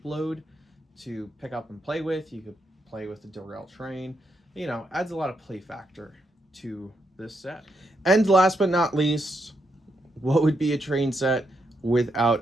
load to pick up and play with, you could play with the derailed train, you know, adds a lot of play factor to this set. And last but not least, what would be a train set without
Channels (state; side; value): normal; both; correlation 0.80